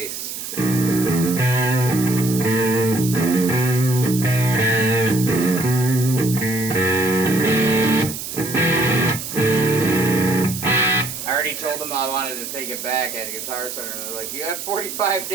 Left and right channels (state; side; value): noise; right; hiss, 8 dB below the sound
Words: I already told them I wanted to take it back at a Guitar Center, and they're like, "You have 45